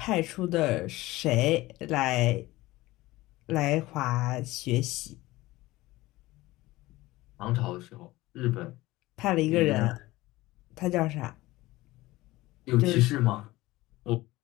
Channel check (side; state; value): right; quieter; 18.7 dB